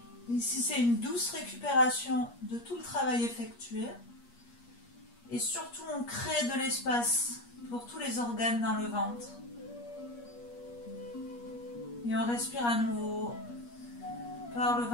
Ici, c'est une douce récupération de tout le travail effectué. Et surtout, on crée de l'espace pour tous les organes dans le ventre. Et on respire à nouveau par le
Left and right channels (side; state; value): right; late; 8.4 ms